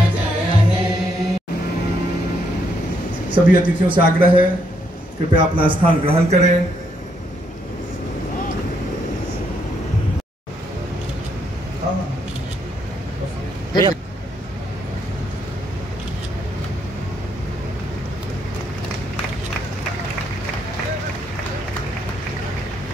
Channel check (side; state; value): both; normal; correlation 0.74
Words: जय हे। सभी अतिथियों से आग्रह है कृपया अपना स्थान ग्रहण करें।